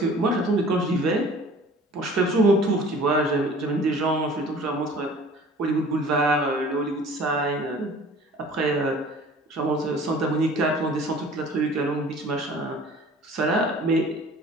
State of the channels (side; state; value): both; normal; correlation 0.47